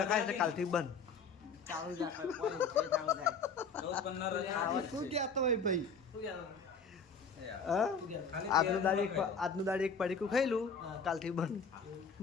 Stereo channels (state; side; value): quieter; right; 4.9 dB